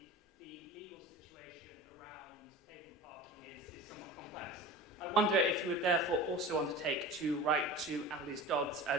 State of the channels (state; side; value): normal; both; correlation 0.35